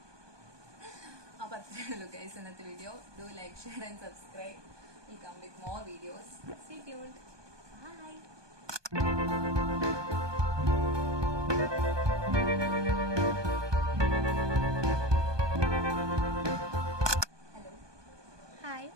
അപ്പോൾ അത്രയേ ഉള്ളൂ guys ഇന്നത്തെ video. Do like, share and subscribe. Will come with more videos. Stay tuned. Bye. Hello. Hi,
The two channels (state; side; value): late; left; 1.2 ms